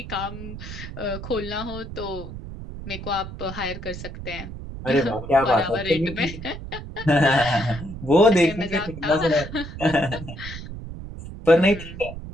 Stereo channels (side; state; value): right; noise; rumble, 10 dB below the sound